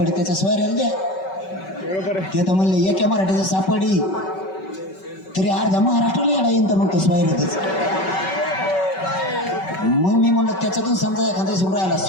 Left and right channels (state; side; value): late; right; 5.3 ms